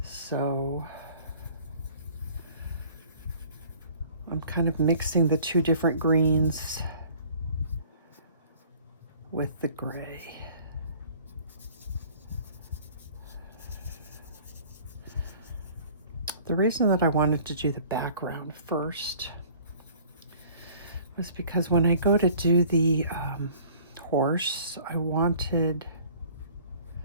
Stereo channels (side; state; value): both; inverted; correlation -0.51